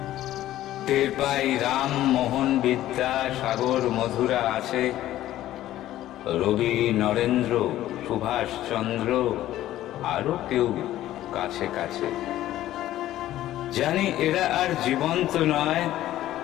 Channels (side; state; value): right; quieter; 13.8 dB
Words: টের পাই রাম মোহন বিদ্যা সাগর মধুরা আছে, রবি নরেন্দ্র সুভাষ চন্দ্র আরো কেউ কাছে কাছে। জানি এরা আর জীবন্ত নয়,